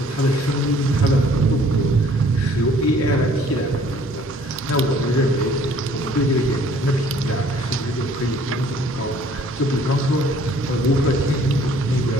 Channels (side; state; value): both; normal; correlation 0.57